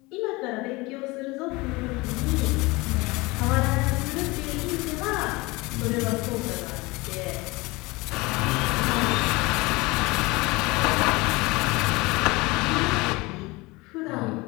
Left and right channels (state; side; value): quieter; right; 23.3 dB